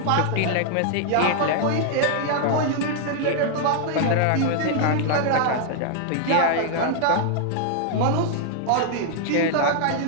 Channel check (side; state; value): both; different; correlation 0.00